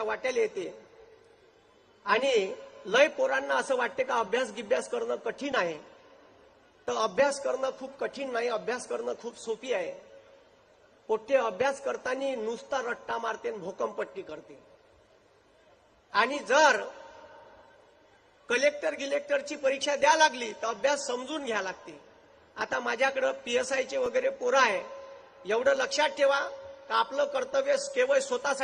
वाट्याला येते आणि लय पोरांना असं वाटते का अभ्यास करणं कठीण आहे. तर अभ्यास करणं खूप कठीण नाही. अभ्यास करणं खूप सोपी आहे. पोट्टे अभ्यास करताना नुसता रट्टा मारते, भोकमपट्टी करते. आणि जर कलेक्टरची परीक्षा द्या लागली तर अभ्यास समजून घ्या लागते. आता माझ्याकडे PSIचे वगैरे पोरं आहे. एवढं लक्षात ठेवा का आपलं कर्तव्य केवळ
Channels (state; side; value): identical; both; correlation 1.00